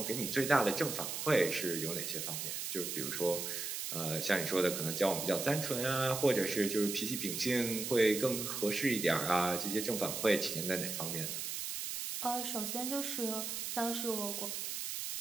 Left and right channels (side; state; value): right; noise; hiss, 4 dB below the sound